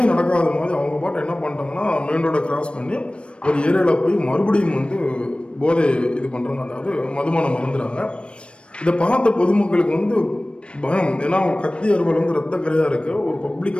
நடக்காத மாதிரி அவங்க பாட்டு என்ன பண்ணிட்டாங்கன்னா மெயின் ரோடை கிராஸ் பண்ணி ஒரு ஏரியாவில் போய் மறுபடியும் வந்து போதை இது பண்ணுறாங்க, அதாவது மதுபானம் மறந்துடுறாங்க. இதை பார்த்த பொதுமக்களுக்கு வந்து பயம். ஏன்னா அவங்க கத்தி அறுவல் வந்து ரத்த கரையாக இருக்கு. ஒரு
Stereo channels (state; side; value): late; right; 0.058 ms